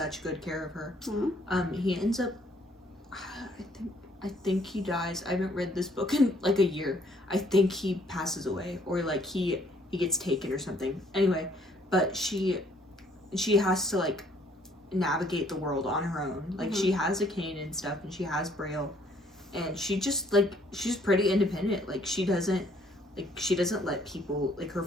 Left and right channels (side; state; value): both; normal; correlation 0.63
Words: good care of her. He ends up, I think he dies. I haven't read this book in like a year. I think he passes away, or like he gets taken or something. Anyway, but she has to like navigate the world on her own. Like, she has a cane and stuff, and she has Braille, and she just like, she's pretty independent. Like, she doesn't let people, like, her